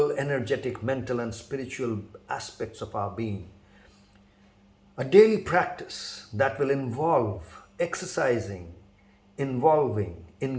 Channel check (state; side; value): identical; both; correlation 1.00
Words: energetic, mental, and spiritual aspects of our being. A daily practice that will involve exercising, involving,